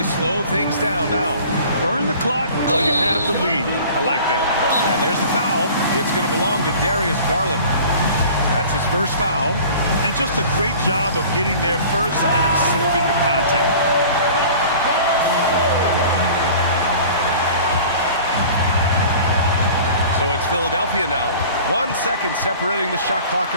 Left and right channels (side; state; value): both; inverted; correlation -0.44